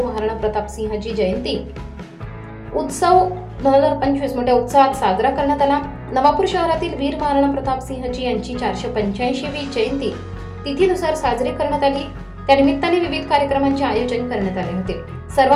महाराणा प्रताप सिंहजी जयंती उत्सव 2025 मोठ्या उत्साहात साजरा करण्यात आला। नवापूर शहरातील वीर महाराणा प्रताप सिंहजी यांची 485वी जयंती तिथीनुसार साजरी करण्यात आली। त्या निमित्ताने विविध कार्यक्रमांचे आयोजन करण्यात आले होते।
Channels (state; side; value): identical; both; correlation 1.00